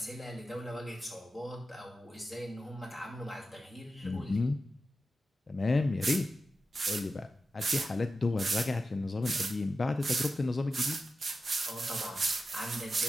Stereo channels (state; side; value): normal; both; correlation 0.91